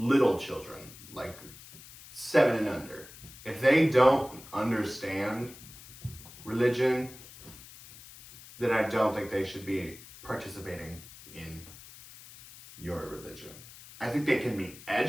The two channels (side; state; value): left; noise; hiss, 18 dB below the sound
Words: children, like 7 and under. If they don't understand religion, then I don't think they should be participating in your religion. I think they can be